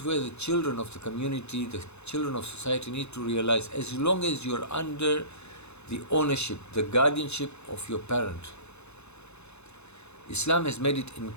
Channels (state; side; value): late; right; 0.81 ms